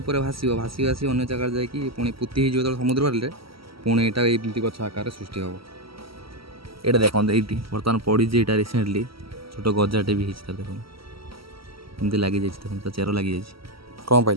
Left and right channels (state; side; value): late; left; 0.75 ms